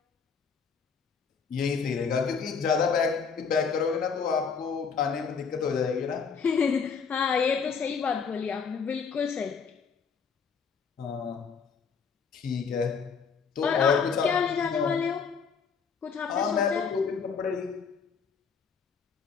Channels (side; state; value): right; quieter; 5.9 dB